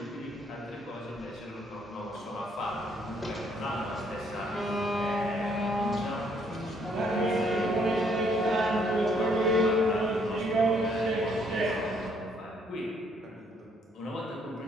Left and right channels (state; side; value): normal; both; correlation 0.68